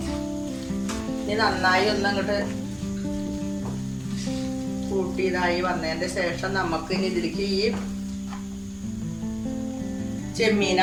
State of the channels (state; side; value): identical; both; correlation 1.00